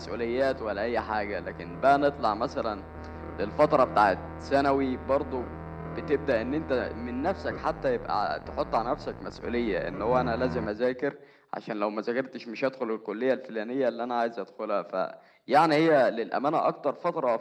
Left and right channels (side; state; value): both; identical; correlation 1.00